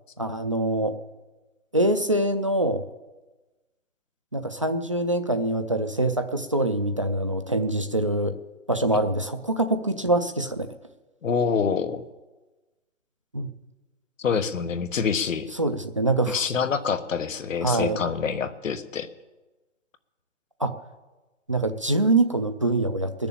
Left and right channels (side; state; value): both; normal; correlation -0.16